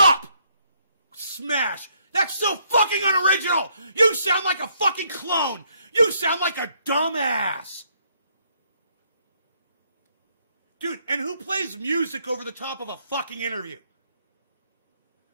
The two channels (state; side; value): inverted; both; correlation -0.71